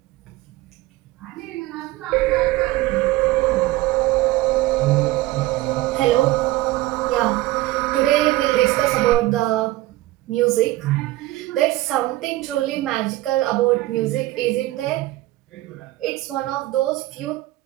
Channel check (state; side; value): quieter; left; 17.6 dB